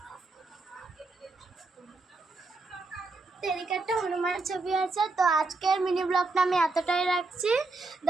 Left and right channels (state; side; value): quieter; left; 3.5 dB